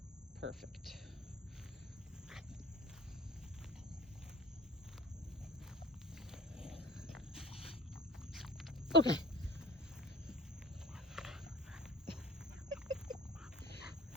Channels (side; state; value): both; normal; correlation 0.43